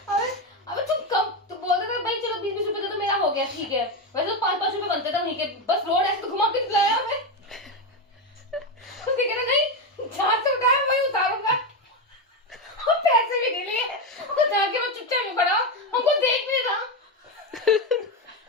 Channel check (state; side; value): normal; both; correlation 0.11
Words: अबे तुम कम तो बोल रहे थे भाई चलो 20-20 रुपए तो मेरा हो गया, ठीक है। वैसे तो 5-5 रुपए बनते थे वहीं के, बस रोड ऐसे तो घुमा के लाया हमें। उसने कहा नहीं जहाँ से उठाया वहीं उतारूंगा, और पैसे भी नहीं लिए। और जाके वो चुपचाप में खड़ा, हमको देख नहीं रहा,